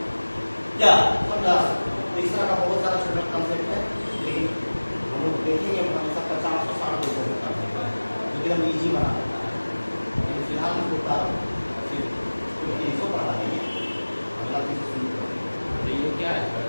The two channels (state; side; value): inverted; both; correlation -1.00